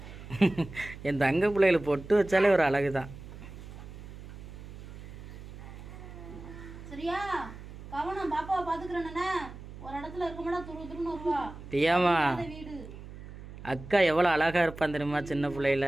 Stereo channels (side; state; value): right; noise; hum, 14 dB below the sound